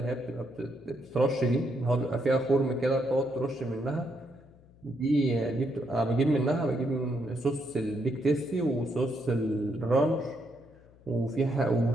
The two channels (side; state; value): left; noise; hum, 26 dB below the sound